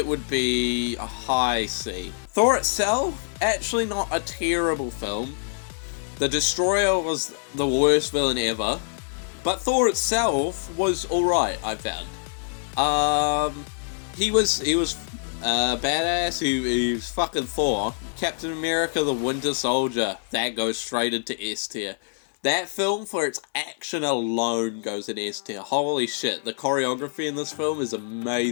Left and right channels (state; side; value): silent; right; digital silence